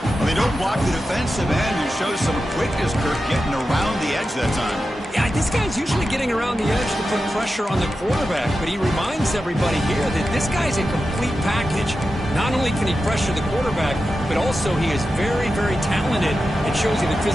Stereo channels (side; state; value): both; normal; correlation 0.91